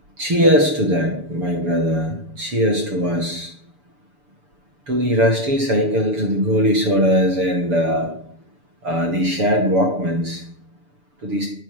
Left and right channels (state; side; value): late; left; 6.9 ms